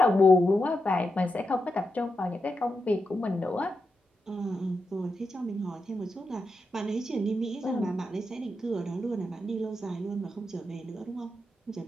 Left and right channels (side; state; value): both; normal; correlation 0.87